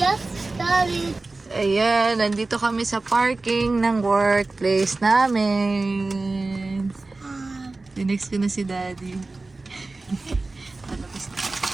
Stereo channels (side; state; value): left; quieter; 3.4 dB